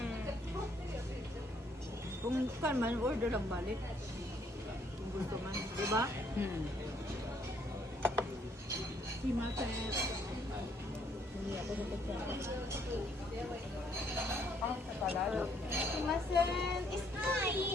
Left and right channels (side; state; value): both; normal; correlation 0.67